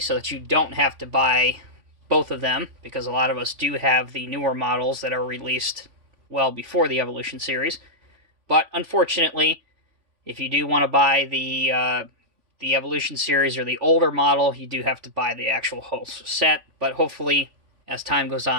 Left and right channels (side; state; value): left; late; 3.5 ms